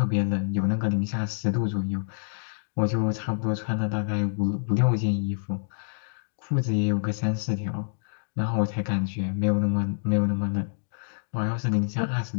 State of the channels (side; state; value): right; silent; digital silence